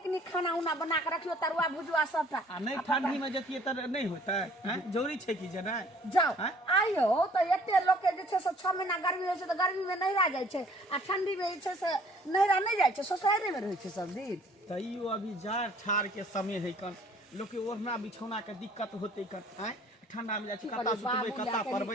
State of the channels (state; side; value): normal; both; correlation 0.56